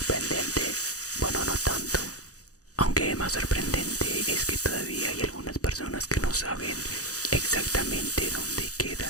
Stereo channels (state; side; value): late; right; 0.66 ms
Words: bueno, no tanto. Aunque más sorprendente es que todavía hay algunas personas que no saben exactamente dónde